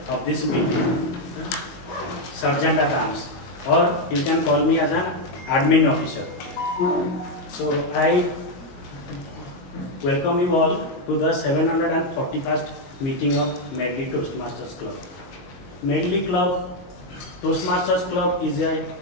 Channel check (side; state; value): right; late; 22 ms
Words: of this meeting, Sergeant at Arms, or you can call me as an admin officer. So I welcome you all to the 741st meeting of Medley Toastmasters Club. Medley Club, Toastmasters Club is a